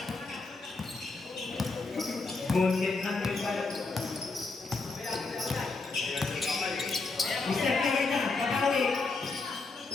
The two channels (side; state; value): right; quieter; 3.9 dB